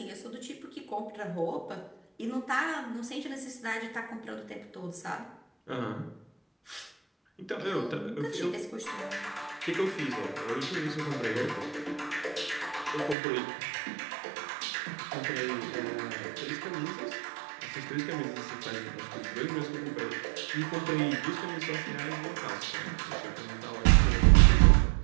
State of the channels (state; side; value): drops out; left; at 13.2 s